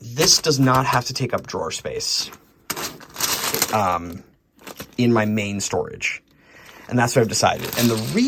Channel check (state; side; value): identical; both; correlation 1.00